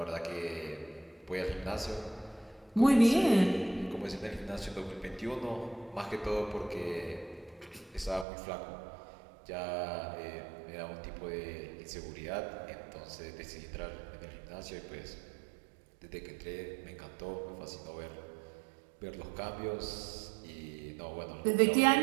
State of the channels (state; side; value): drops out; left; at 8.2 s